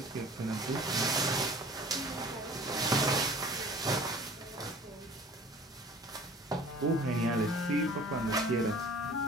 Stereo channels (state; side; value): normal; both; correlation 0.46